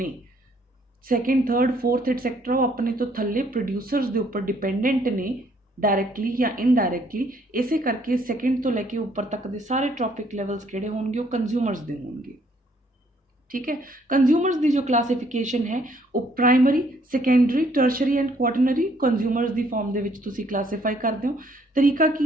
ਸੈਕੰਡ ਥਰਡ ਫੋਰਥ ਐਟਸੈਕਟਰਾ ਉਹ ਆਪਣੇ ਤੋਂ ਥੱਲੇ ਪ੍ਰੋਡਿਊਸਰਸ ਦੇ ਉੱਪਰ ਡਿਪੈਂਡੈਂਟ ਨੇ, डायरैक्टली या इनडायरैक्टली। इसे करके सैकेंड तो लैके ऊपर तक के सारे ट्रॉफिक लैवल्स किहड़े होणगे वो कंज्यूमर्स दे होणगे, ठीक है। कंज्यूमर्स की जो क्लासिफिकेशन है वो primary, secondary, tertiary and quaternary consumers की फॉर्म दे विच तुसीं क्लासीफाई करदे हो। तरीका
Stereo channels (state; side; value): normal; both; correlation 0.65